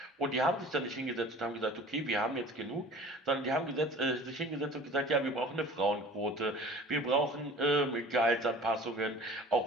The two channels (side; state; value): both; normal; correlation 0.44